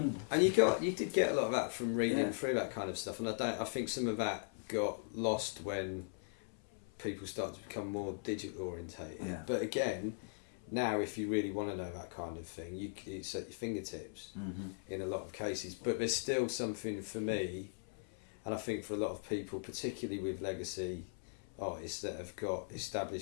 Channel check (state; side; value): silent; right; 52 dB below the other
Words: you did get a lot of that from reading through that kind of stuff, and I think some of that got lost when people started to become more digital orientated. Yeah. But again, now if you really want to know that kind of thing, it's at your fingertips in a lot of cases. But there's still something for me, and I think for a lot of people, particularly with legacy artists that have got